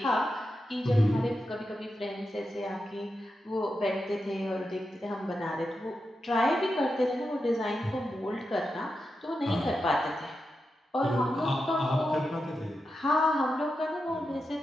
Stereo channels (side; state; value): both; normal; correlation 0.88